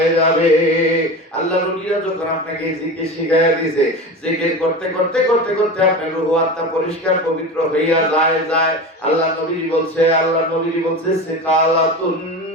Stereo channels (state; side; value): normal; both; correlation 0.28